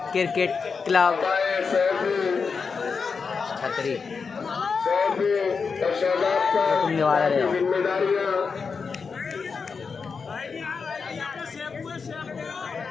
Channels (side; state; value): right; quieter; 5.3 dB